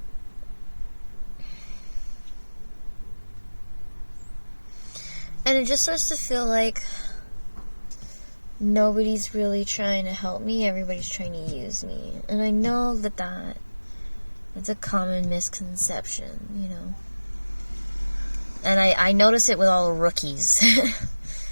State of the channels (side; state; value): both; inverted; correlation -1.00